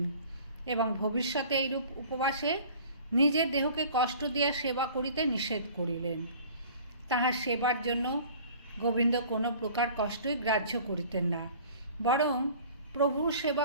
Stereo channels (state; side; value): inverted; both; correlation -0.47